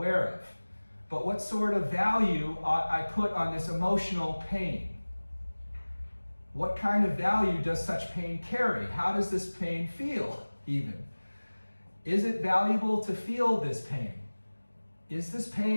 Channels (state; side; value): inverted; both; correlation -1.00